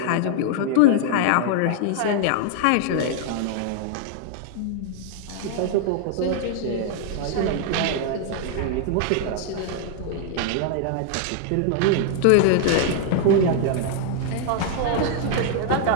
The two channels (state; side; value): different; both; correlation 0.00